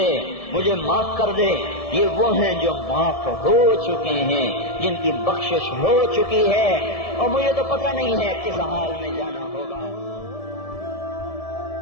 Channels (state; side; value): late; right; 1.7 ms